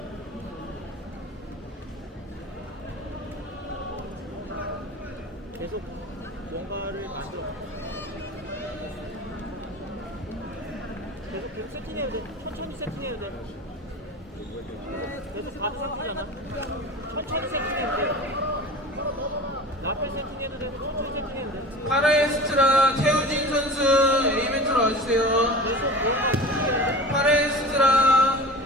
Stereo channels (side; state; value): both; normal; correlation 0.36